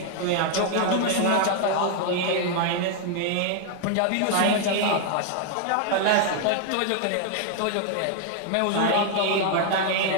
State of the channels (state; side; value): different; both; correlation 0.00